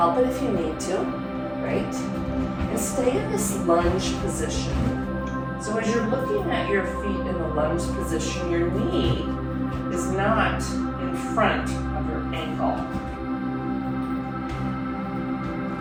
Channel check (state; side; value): identical; both; correlation 1.00